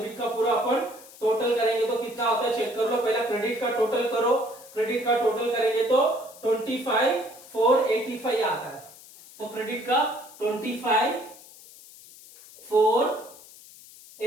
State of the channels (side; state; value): left; noise; hiss, 20 dB below the sound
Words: का पूरा अपन टोटल करेंगे तो कितना होता है चेक कर लो पहला क्रेडिट का टोटल करो क्रेडिट का टोटल करेंगे तो 25 485 आता है तो क्रेडिट का 25